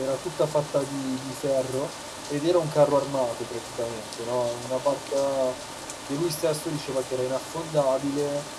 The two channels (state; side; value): identical; both; correlation 1.00